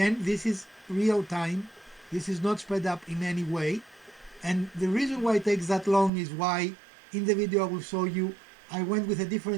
this is real time. This is not sped up in any way. And the reason why it takes that long is why in the video I will show you I went with a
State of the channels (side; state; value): left; drops out; at 6.1 s